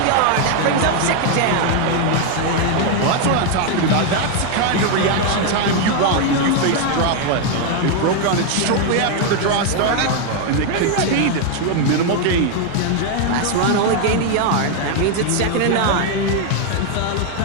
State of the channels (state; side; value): different; both; correlation 0.01